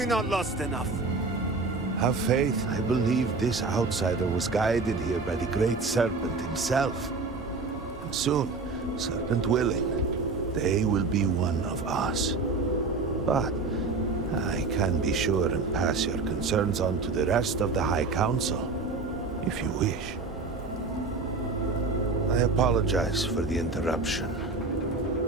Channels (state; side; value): quieter; left; 3.9 dB